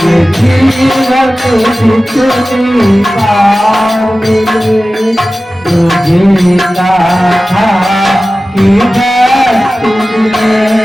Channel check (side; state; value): both; normal; correlation 0.96